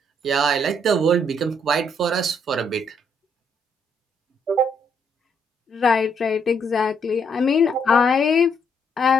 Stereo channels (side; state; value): both; normal; correlation 0.72